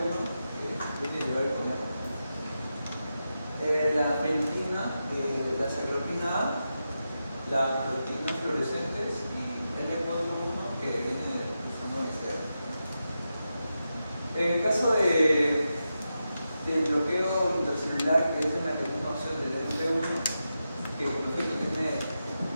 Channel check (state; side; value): inverted; both; correlation -0.89